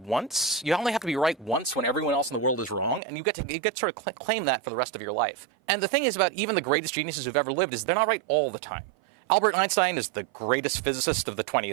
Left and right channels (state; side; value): drops out; left; at 3.0 s